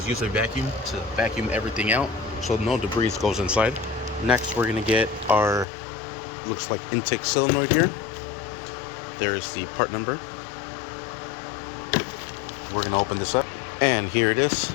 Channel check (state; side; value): drops out; right; at 5.7 s